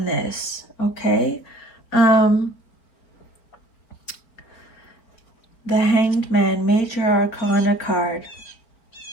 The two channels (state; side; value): late; right; 4.5 ms